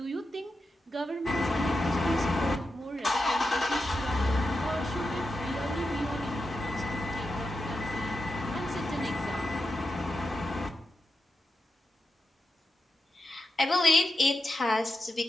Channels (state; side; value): normal; both; correlation 0.88